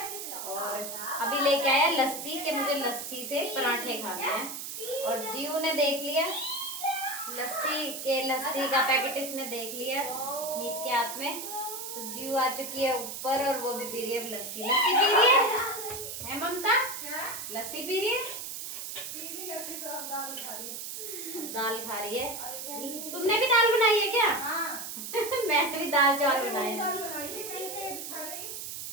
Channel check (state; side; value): noise; right; hiss, 7 dB below the sound